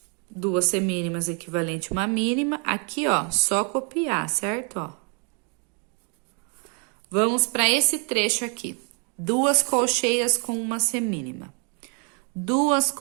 duas semínimas equivalente a uma mínima. Aqui, ó, só copiar, certo? Ó. Vamos para esse trecho aqui. Duas colcheias com uma semínima. Duas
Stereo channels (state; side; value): quieter; left; 37.6 dB